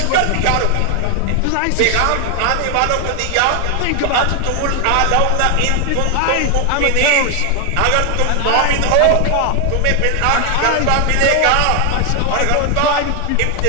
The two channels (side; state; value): both; different; correlation 0.01